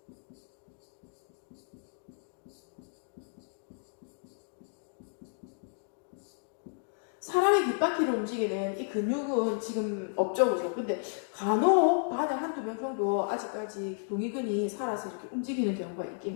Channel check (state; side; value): silent; right; digital silence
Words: 사람의 귓바퀴를 움직이는 이 근육은 지금 없죠, 그죠? 근데 간혹 반에 한두 명 정도 아직까지 동의근이 살아서 이렇게 움직이는 경우가